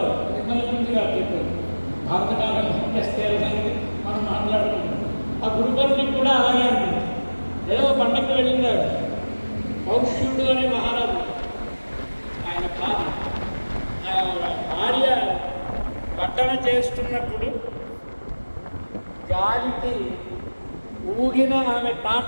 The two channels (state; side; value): inverted; both; correlation -1.00